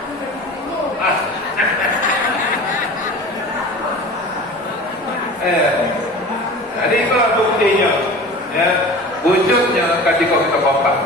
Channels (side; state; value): both; normal; correlation 0.37